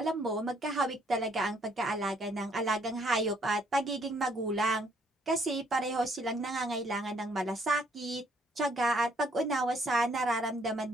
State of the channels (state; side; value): normal; both; correlation 0.67